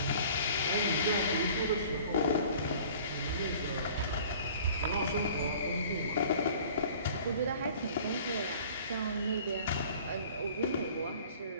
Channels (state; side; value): inverted; both; correlation -0.48